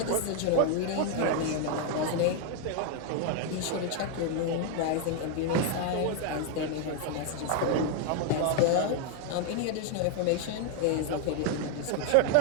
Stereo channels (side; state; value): both; different; correlation 0.00